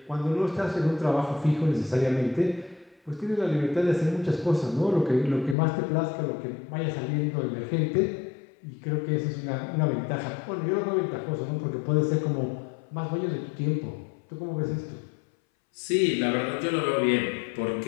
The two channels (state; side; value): drops out; right; at 5.6 s